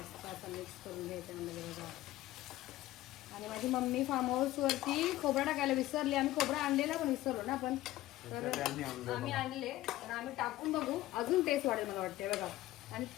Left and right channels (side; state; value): right; quieter; 15.9 dB